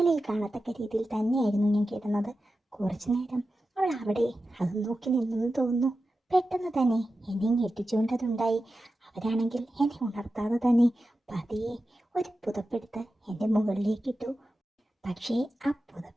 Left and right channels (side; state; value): both; normal; correlation 0.92